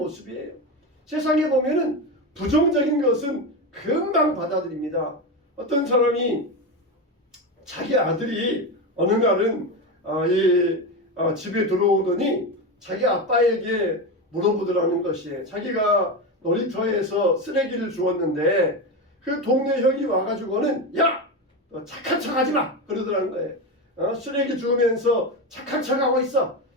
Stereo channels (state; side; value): normal; both; correlation 0.17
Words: 세상에 보면은 부정적인 것은 금방 받아들입니다. 어떤 사람이 자기 아들이 어느 날은 집에 들어오더니 자기 아빠에게 물어보더라는 것이에요. 자기가 놀이터에서 쓰레기를 주웠는데 그 동네 형이 와가지고는 야! 너 착한 척 하지 마! 그러더라는 거예요. 쓰레기 주우면서 착한 척 하고 있어.